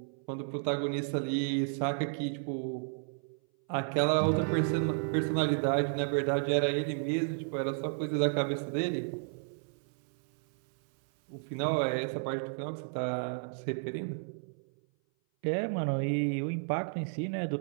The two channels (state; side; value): silent; left; 56 dB below the other